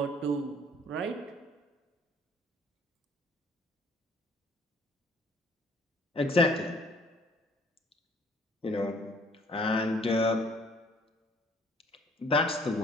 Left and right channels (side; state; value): both; normal; correlation 0.59